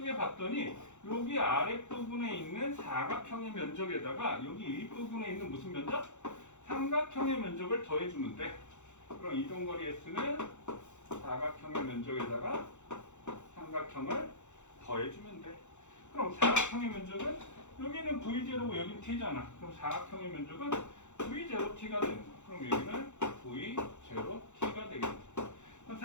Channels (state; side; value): late; right; 0.84 ms